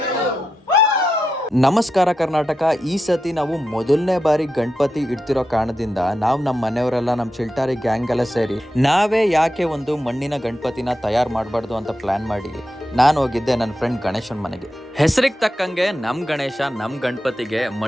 ನಮಸ್ಕಾರ ಕರ್ನಾಟಕ. ಈ ಸತಿ ನಾವು ಮೊದಲನೇ ಬಾರಿ ಗಣಪತಿ ಇಡ್ತಿರೋ ಕಾರಣದಿಂದ ನಾವು ನಮ್ಮ ಮನೆಯವರೆಲ್ಲ ನಮ್ಮ ಚಿಲ್ಟಾರಿ ಗ್ಯಾಂಗ್ ಎಲ್ಲ ಸೇರಿ ನಾವೇ ಯಾಕೆ ಒಂದು ಮಣ್ಣಿನ ಗಣಪತಿನ ತಯಾರು ಮಾಡಬಾರ್ದು ಅಂತ ಪ್ಲಾನ್ ಮಾಡಿ ನಾನು ಹೋಗಿದ್ದೆ ನನ್ನ ಫ್ರೆಂಡ್ ಗಣೇಶನ್ ಮನೆಗೆ. ಹೆಸರಿಗೆ ತಕ್ಕಂಗೆ ನಮ್ಮ ಗಣೇಶ ನಮ್ಮ ಗಣಪತಿಗೆ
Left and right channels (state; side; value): normal; both; correlation 0.88